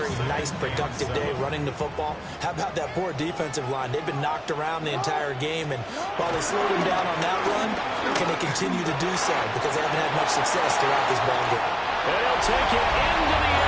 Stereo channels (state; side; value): identical; both; correlation 1.00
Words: nice, productive day running the football. How about that poor defensive line? They've been knocked around the entire game, and while they slowed them down on that run, can they continue to do so? Because they haven't had much success throughout this ball game. They'll take it into the